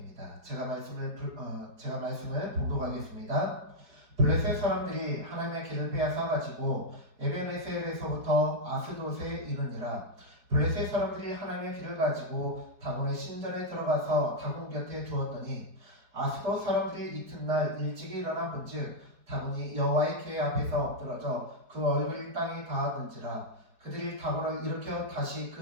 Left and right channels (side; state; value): left; late; 4.7 ms